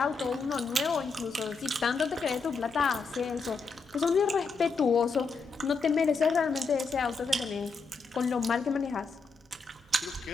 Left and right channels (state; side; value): quieter; right; 4.5 dB